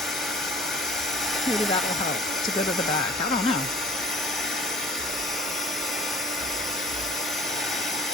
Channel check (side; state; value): both; normal; correlation 0.51